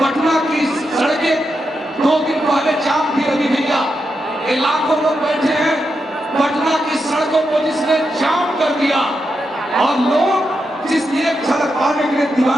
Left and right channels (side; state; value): both; normal; correlation 0.86